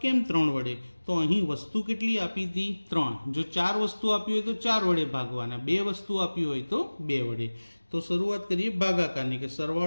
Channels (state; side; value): inverted; both; correlation -1.00